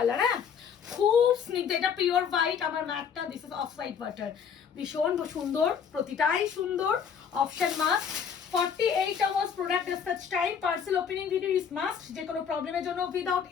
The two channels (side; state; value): right; quieter; 7.2 dB